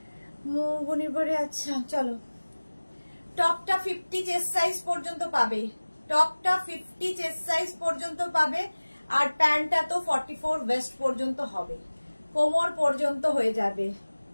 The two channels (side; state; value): both; inverted; correlation -1.00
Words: মনির পরে, আচ্ছা চলো। টপটা 50 চেস্ট সাইজ পর্যন্ত পাবে, টপটা 50 চেস্ট সাইজ পর্যন্ত পাবে, আর প্যান্টটা তো 44 ওয়েস্ট পর্যন্ত হবে, কোমর পর্যন্ত হয়ে যাবে।